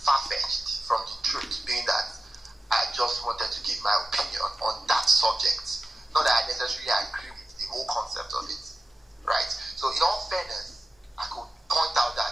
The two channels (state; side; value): normal; both; correlation 0.94